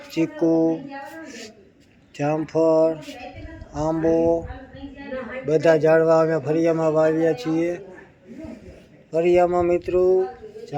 ચીકુ, જામફળ, આંબો, બધા ઝાડવા અમે ફળિયામાં વાવ્યા છીએ. ફળિયામાં મિત્રો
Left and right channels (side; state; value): both; identical; correlation 1.00